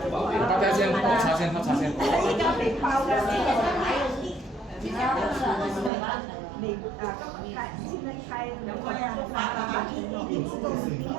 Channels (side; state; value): left; drops out; at 5.9 s